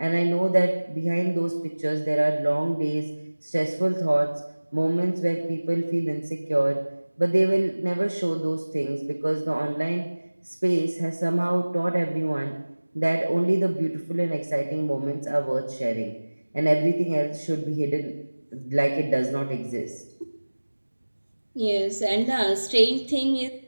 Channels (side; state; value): both; inverted; correlation -1.00